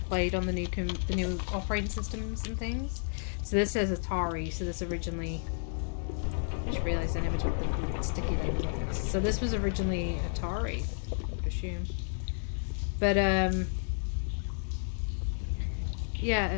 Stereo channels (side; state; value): right; silent; digital silence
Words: on the new operating systems and things. So this says Atari. So this originally... I just realised I never took the sticky label off this. So this was originally Atari, I would assume. But, yeah,